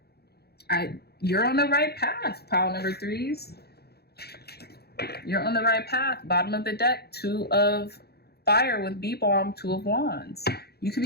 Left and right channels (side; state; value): right; late; 0.47 ms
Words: you're on the right path, pile number 3s. You're on the right path. Bottom of the deck, 2 of fire with B-bomb, 2 of wands. You could